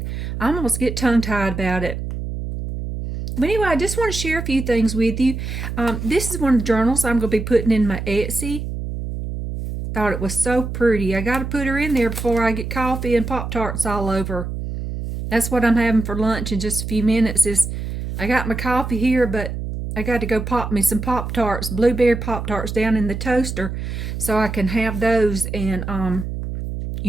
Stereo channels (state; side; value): noise; right; hum, 5 dB below the sound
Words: almost get tongue tied about it. But anyway, I just want to share a few things with you. This is one of the journals I'm going to be putting in my Etsy. Thought it was so pretty. I got to put her in there before I get coffee and Pop-Tarts all over. That's what I'm having for lunch in just a few minutes. I got my coffee here, but I got to go pop me some Pop-Tarts, blueberry Pop-Tarts down in the toaster so I can have those. And, I